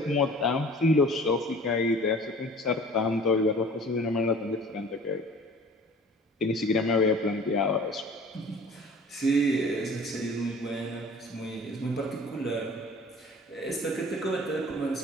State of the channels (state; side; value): normal; both; correlation 0.46